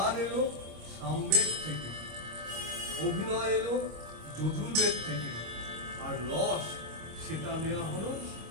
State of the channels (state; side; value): late; left; 25 ms